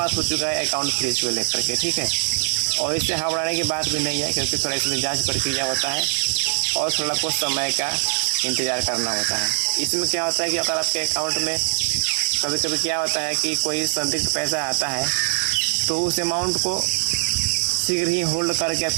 हो चुका है अकाउंट फ्रीज को लेकर के। ठीक है, और इससे घबराने की बात भी नहीं है क्योंकि थोड़ा इसमें जाँच प्रक्रिया होता है और थोड़ा कुछ समय का इंतज़ार करना होता है। इसमें क्या होता है कि अगर आपके अकाउंट में कभी कभी क्या होता है कि कोई संदिग्ध पैसा आता है तो उस अमाउंट को शीघ्र ही होल्ड करके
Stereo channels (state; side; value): silent; left; 64 dB below the other